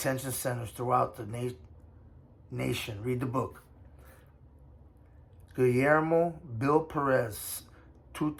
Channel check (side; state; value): both; identical; correlation 1.00